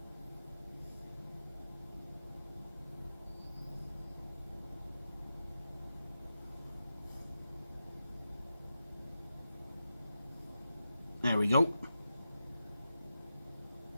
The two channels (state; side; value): inverted; both; correlation -0.90